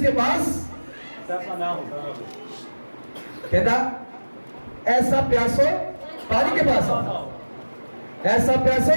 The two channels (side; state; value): both; inverted; correlation -1.00